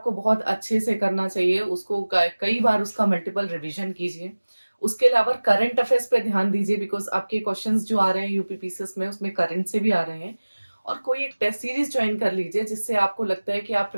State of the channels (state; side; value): inverted; both; correlation -1.00